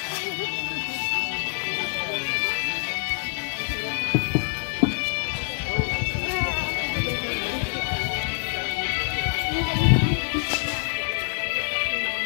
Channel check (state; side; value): silent; right; digital silence